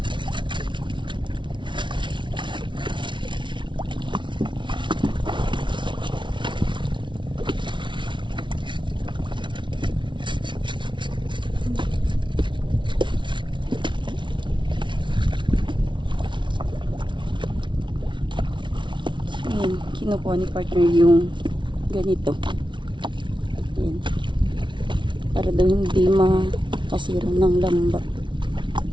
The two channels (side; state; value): left; late; 0.24 ms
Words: Ayan, kinukuha ni partner yung ganito. Ayan. Para daw hindi makasira ng lamba.